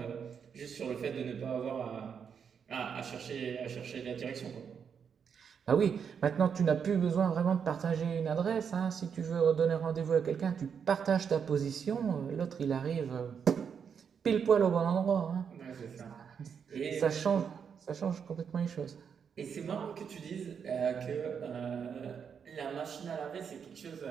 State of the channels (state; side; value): quieter; left; 7.0 dB